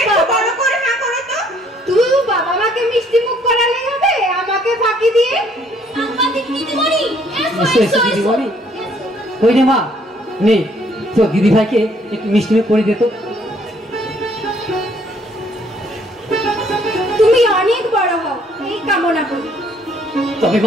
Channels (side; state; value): both; normal; correlation 0.64